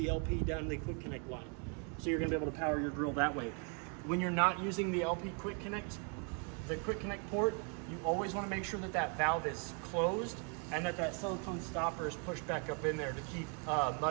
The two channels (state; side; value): quieter; left; 39.2 dB